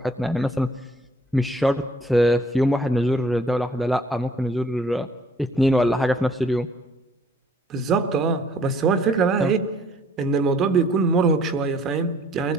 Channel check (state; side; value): normal; both; correlation 0.59